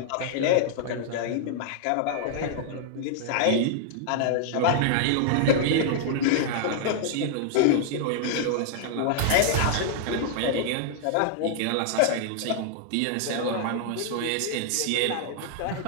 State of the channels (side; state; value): both; different; correlation -0.01